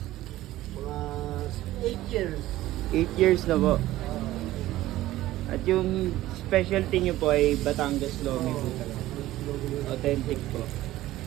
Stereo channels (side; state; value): left; quieter; 15.6 dB